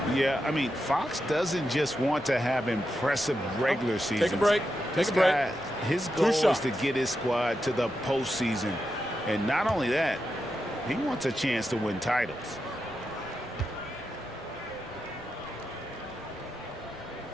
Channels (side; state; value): left; noise; rumble, 24 dB below the sound